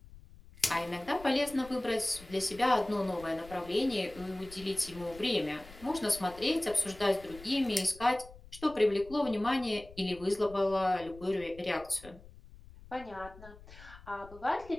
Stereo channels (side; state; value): left; noise; rumble, 19 dB below the sound